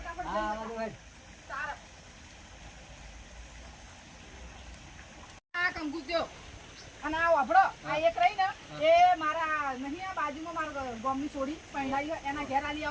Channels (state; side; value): identical; both; correlation 1.00